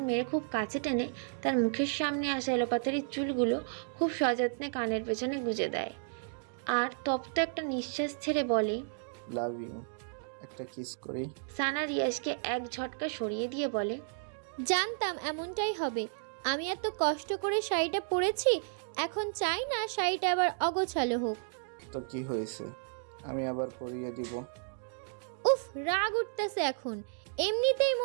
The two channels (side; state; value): left; silent; digital silence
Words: মেরে খুব কাছে টেনে তার মুখের সামনে আসা এলোপাতাড়ির চুলগুলো খুব সযত্নে কানের পেছনে গুজে দেয় আর তপ্ত একটা নিঃশ্বাস ছেড়ে বলে, লাভ ইউ, একটা কিস করি। সানা রিয়াজকে এক ঝটকা সরিয়ে দিয়ে বলে, জানতাম এমনটাই হবে। আমি এত কষ্ট করে শাড়িটা পরেছি, এখন চাই না শাড়িটা আবার অগোছালো হোক। তো কি হয়েছে, আমি আবার পরিয়ে দিব। উফ, রাগ উঠতেছে এখন। এমনিতেই